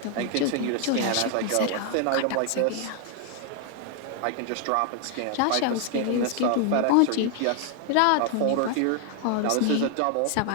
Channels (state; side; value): different; both; correlation 0.00